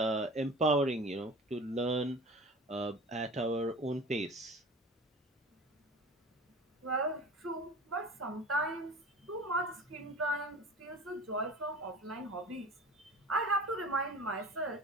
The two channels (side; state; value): both; normal; correlation 0.38